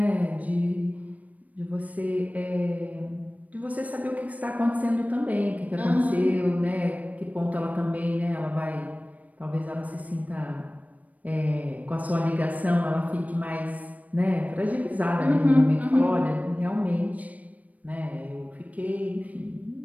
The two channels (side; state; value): left; late; 0.072 ms